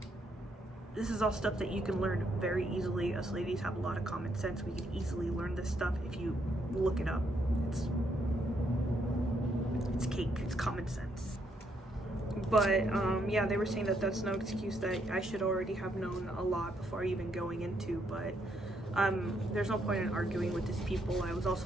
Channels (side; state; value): both; normal; correlation 0.74